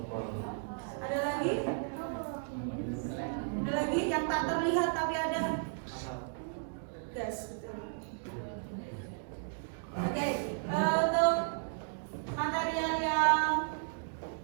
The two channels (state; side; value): silent; left; digital silence